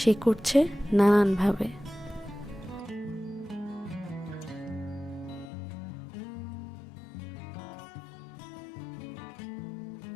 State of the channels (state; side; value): drops out; right; at 5.5 s